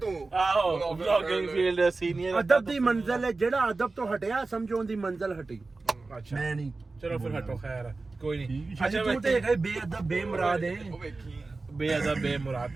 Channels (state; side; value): quieter; left; 3.6 dB